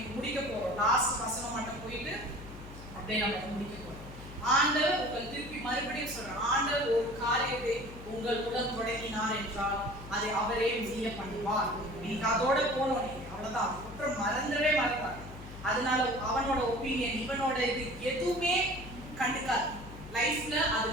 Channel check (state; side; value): noise; left; hum, 14 dB below the sound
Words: முடிக்க போறோம். லாஸ்ட் வசனம் மட்டும் போயிட்டு அப்படியே நம்ம முடிக்க போறோம். ஆண்டவர் உங்கள் திருப்பி மறுபடியும் சொல்றார், ஆண்டவர் ஒரு காரியத்தை உங்கள் உடன் தொடங்கினார் என்றால் அதை அவரே முடிய பண்ணுவார். நீங்க அதோட போனோம், நீங்க அவ்வளவுதான். குற்றம் மறந்தவே மறந்தார். அதனால அவனோட ஒப்பீனியன், இவனோட இது எதுவுமே கண்டுக்காது. லைஃப்ல அது